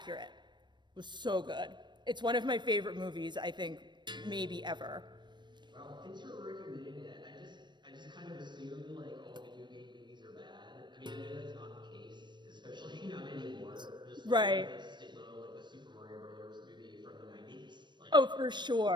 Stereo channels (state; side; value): late; left; 0.22 ms